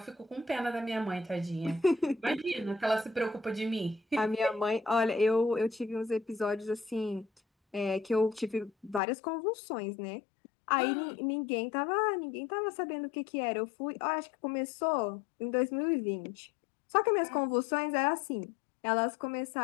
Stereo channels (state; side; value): drops out; right; at 9.0 s